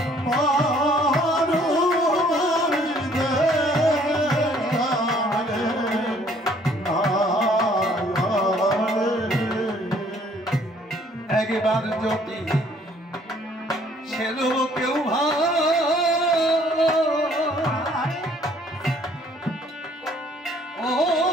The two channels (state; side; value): normal; both; correlation 0.60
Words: একবার যদি ছেলে কেউ